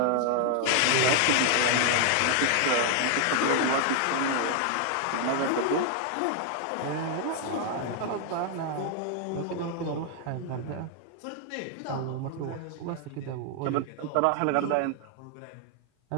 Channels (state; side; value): different; both; correlation 0.00